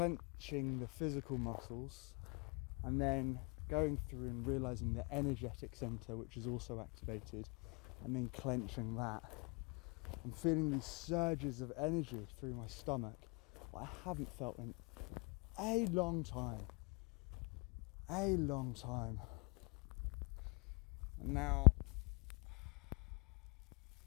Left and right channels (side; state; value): right; quieter; 32.1 dB